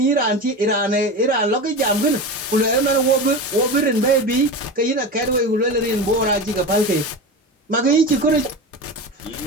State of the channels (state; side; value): normal; both; correlation 0.26